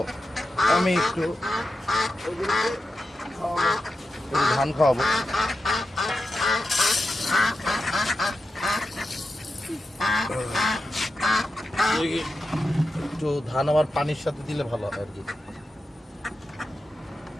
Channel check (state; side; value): normal; both; correlation 0.90